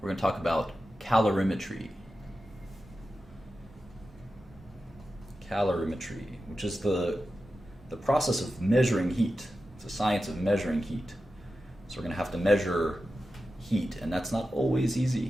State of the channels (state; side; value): normal; both; correlation 0.92